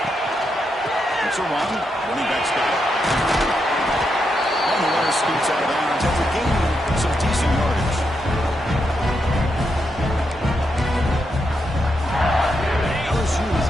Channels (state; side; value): normal; both; correlation 0.83